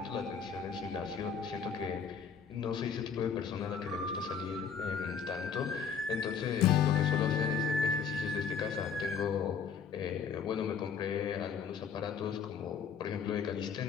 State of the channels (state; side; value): quieter; right; 6.5 dB